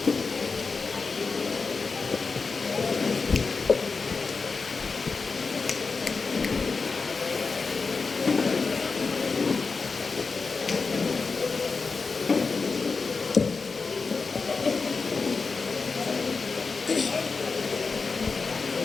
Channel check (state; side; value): quieter; right; 4.5 dB